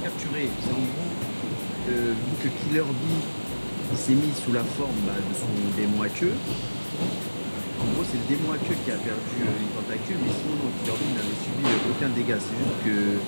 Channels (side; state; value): both; inverted; correlation -1.00